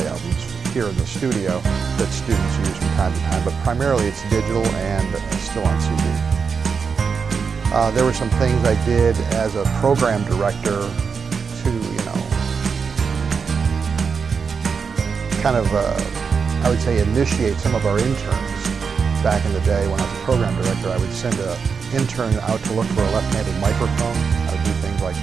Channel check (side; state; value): left; quieter; 5.7 dB